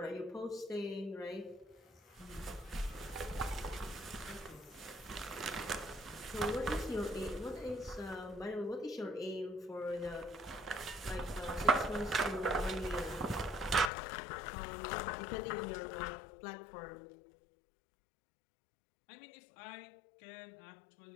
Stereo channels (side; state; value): right; drops out; at 13.9 s